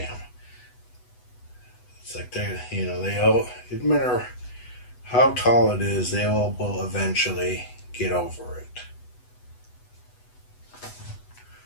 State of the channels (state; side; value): late; right; 8.1 ms